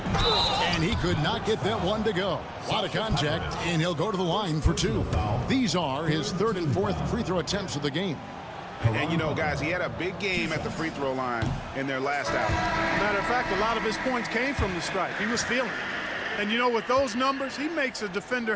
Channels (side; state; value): both; identical; correlation 1.00